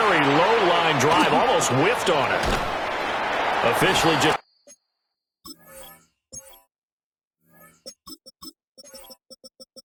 low-line drive, almost whiffed on it. Officially just...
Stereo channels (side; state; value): both; identical; correlation 1.00